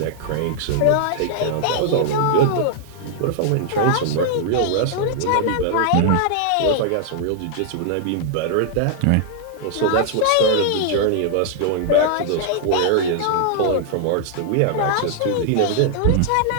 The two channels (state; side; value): different; both; correlation 0.00